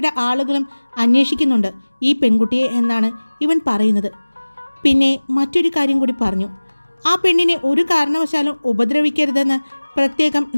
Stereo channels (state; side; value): inverted; both; correlation -1.00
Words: ആളുകളും അന്വേഷിക്കുന്നുണ്ട് ഈ പെൺകുട്ടിയെ എന്നാണ് ഇവൻ പറയുന്നത്. പിന്നെ മറ്റൊരു കാര്യം കൂടി പറഞ്ഞു. ആ പെണ്ണിനെ ഒരു കാരണവശാലും ഉപദ്രവിക്കരുതെന്ന് പ്രത്യേകം